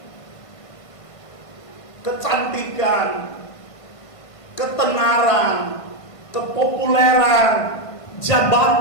Kecantikan, ketenaran, kepopuleran,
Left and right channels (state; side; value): late; right; 1.5 ms